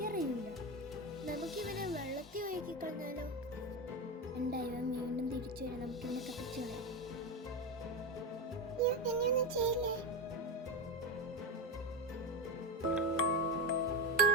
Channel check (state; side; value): normal; both; correlation 0.14